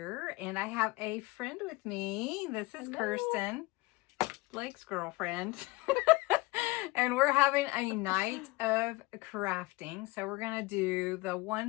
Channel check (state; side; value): quieter; right; 22.7 dB